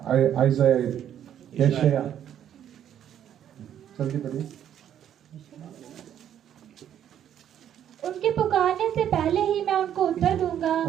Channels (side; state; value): left; quieter; 10.1 dB